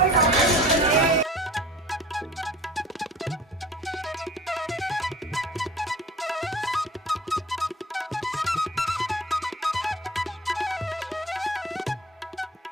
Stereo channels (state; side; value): normal; both; correlation 0.44